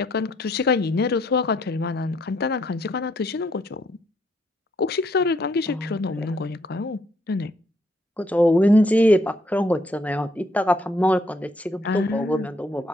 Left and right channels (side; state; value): both; normal; correlation 0.70